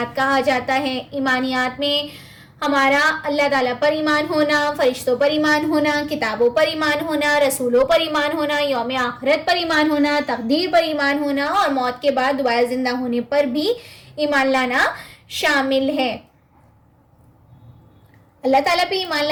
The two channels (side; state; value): both; identical; correlation 1.00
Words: کہا جاتا ہے۔ ایمانیات میں ہمارا اللہ تعالیٰ پر ایمان ہونا، فرشتوں پر ایمان ہونا، کتابوں پر ایمان ہونا، رسولوں پر ایمان ہونا، یوم آخرت پر ایمان ہونا، تقدیر پر ایمان ہونا اور موت کے بعد دوبارہ زندہ ہونے پر بھی ایمان لانا شامل ہے۔ اللہ تعالیٰ پہ ایمان